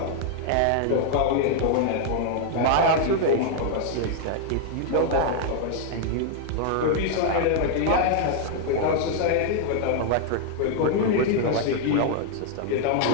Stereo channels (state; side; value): different; both; correlation 0.00